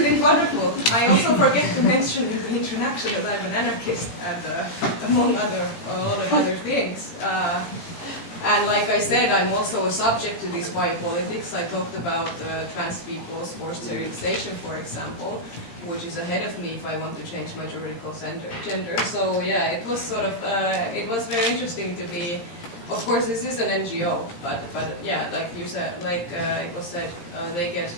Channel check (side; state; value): right; late; 17 ms